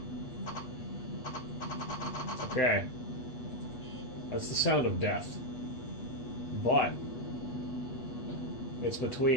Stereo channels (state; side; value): late; right; 8.3 ms